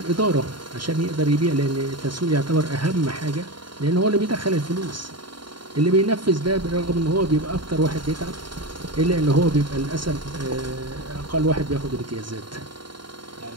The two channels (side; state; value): left; late; 0.72 ms